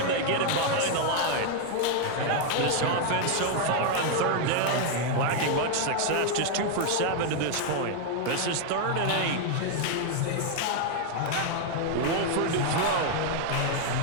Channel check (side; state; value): both; different; correlation 0.00